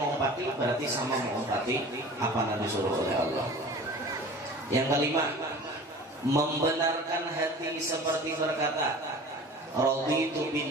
berarti sama mengumpati apa yang disuruh oleh Allah. Yang kelima, membenarkan hati seperti berkata, raditu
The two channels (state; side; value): normal; both; correlation 0.40